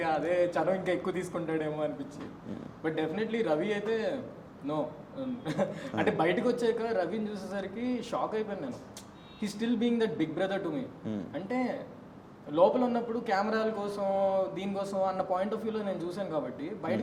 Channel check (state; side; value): identical; both; correlation 1.00